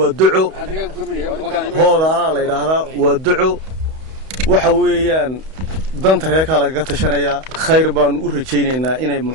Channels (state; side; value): late; left; 31 ms